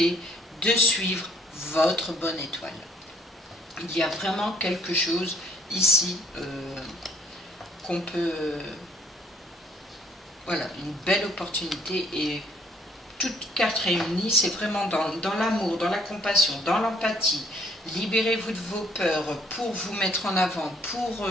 de suivre votre bonne étoile. Il y a vraiment quelque chose ici qu'on peut... voilà, une belle opportunité et toutes cartes réunies, c'est vraiment dans l'amour, dans la compassion, dans l'empathie. Libérez-vous de vos peurs pour vous mettre en avant, pour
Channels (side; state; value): both; normal; correlation 0.63